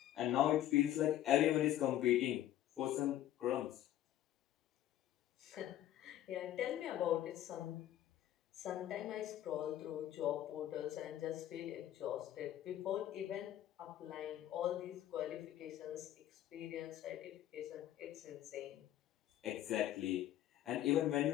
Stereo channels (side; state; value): right; quieter; 12.6 dB